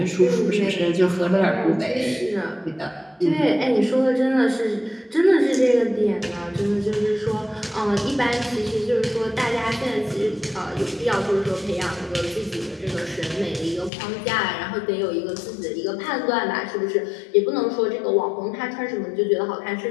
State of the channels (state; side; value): drops out; right; at 13.9 s